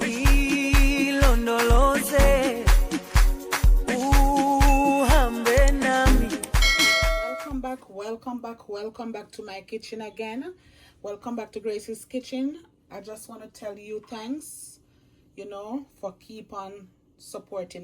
ilondoloze uhambe nami. Welcome back to my kitchen again. Welcome back to Grace's Kitchen. I just want to tell you thanks, for keep on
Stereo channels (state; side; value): identical; both; correlation 1.00